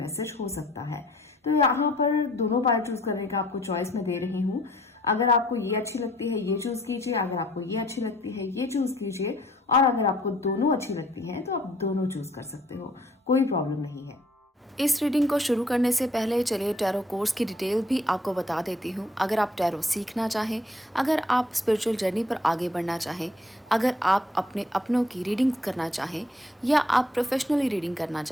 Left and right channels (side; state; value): both; normal; correlation 0.60